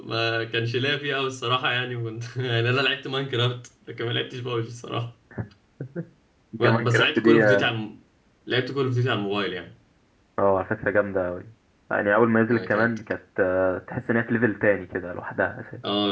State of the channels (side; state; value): both; identical; correlation 1.00